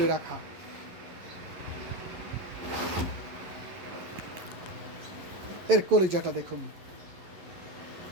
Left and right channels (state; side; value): late; left; 11 ms